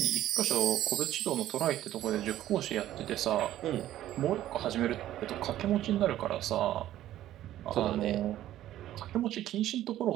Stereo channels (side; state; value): left; quieter; 13.2 dB